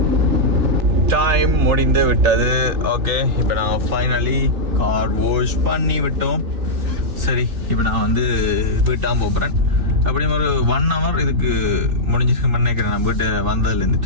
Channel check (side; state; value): left; late; 3.4 ms